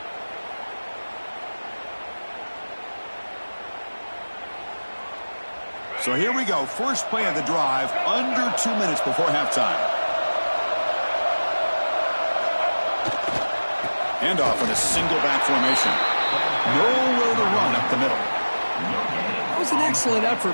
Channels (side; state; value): both; inverted; correlation -1.00